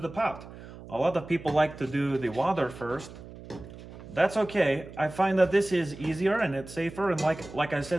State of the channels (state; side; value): noise; right; hum, 16 dB below the sound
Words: the pot. A lot of people like to do the water first. That's okay. I find that this is easier and it's safer, and like I